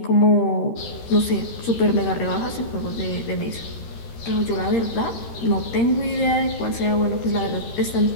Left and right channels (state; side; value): late; right; 13 ms